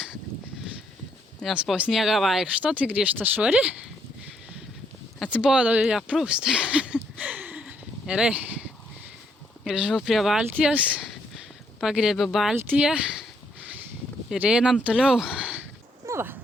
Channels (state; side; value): normal; both; correlation 0.72